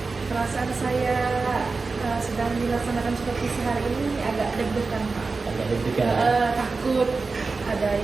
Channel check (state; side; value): quieter; left; 4.1 dB